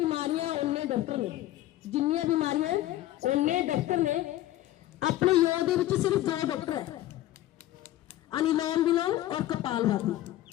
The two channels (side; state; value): right; quieter; 14.6 dB